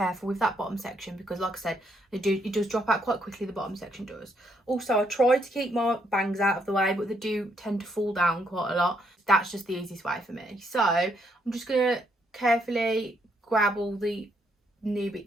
with that bottom section because like I said, it does drop out quite quickly, the bottom section does. Also, I try to keep my bangs out of the way, but they do tend to fall down quite a lot. That's just the easiest way for me. So I'm just going to carefully grab all the new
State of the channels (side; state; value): both; normal; correlation 0.73